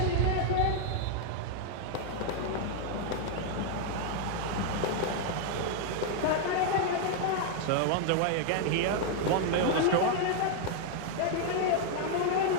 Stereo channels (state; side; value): different; both; correlation 0.00